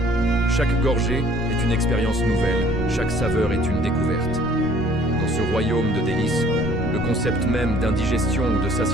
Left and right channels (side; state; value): both; normal; correlation 0.56